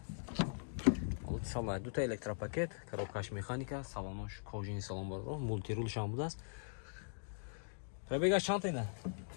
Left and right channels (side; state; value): right; silent; digital silence